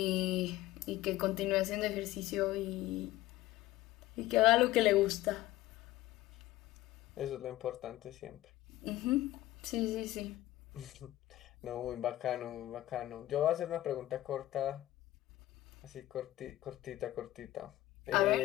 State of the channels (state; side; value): quieter; right; 15.7 dB